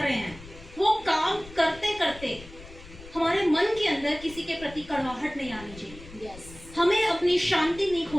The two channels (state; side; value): noise; left; rumble, 18 dB below the sound